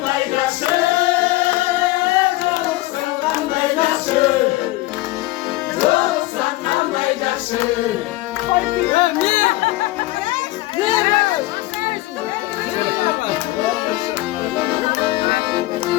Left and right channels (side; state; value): right; quieter; 18.6 dB